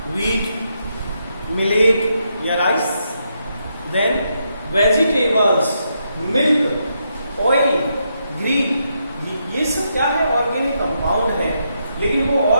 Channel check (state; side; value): inverted; both; correlation -0.80